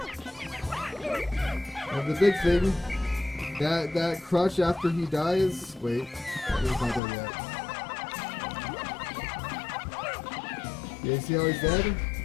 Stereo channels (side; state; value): right; drops out; at 7.0 s